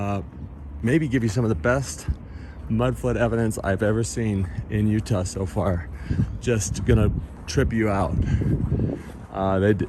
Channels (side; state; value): both; identical; correlation 1.00